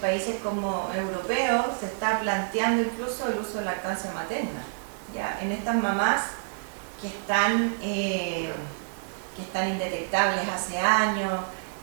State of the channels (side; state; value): left; silent; digital silence